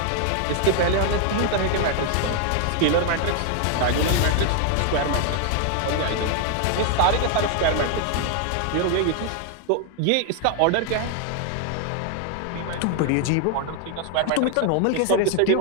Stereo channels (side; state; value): both; different; correlation 0.00